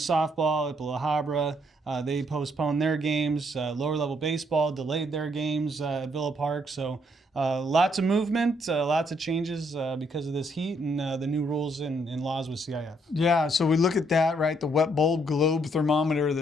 softball at La Habra. They postponed their games. Lower level baseball delayed their games at Villa Park. So lots of movement, lots of changes because of this heat and the new rules and laws with CIF. Yeah, so we look at that, right? The wet bulb globe thermometer,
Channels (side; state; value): both; normal; correlation 0.71